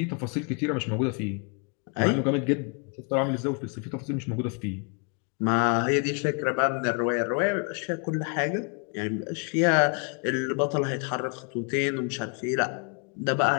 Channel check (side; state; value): right; quieter; 37.5 dB